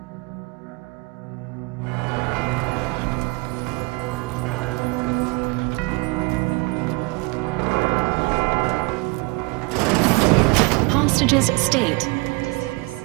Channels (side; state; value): left; quieter; 27.7 dB